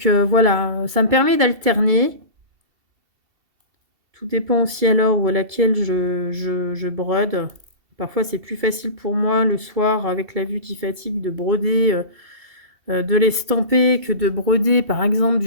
voilà, ça me permet d'alterner. Tout dépend aussi à l'heure où à laquelle je brode. Parfois c'est plus facile pour moi le soir avec la vue qui fatigue de broder, de l'estamper que de broder par exemple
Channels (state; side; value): late; left; 2.7 ms